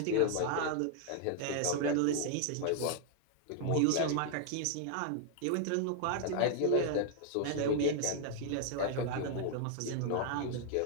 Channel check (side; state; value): both; different; correlation 0.00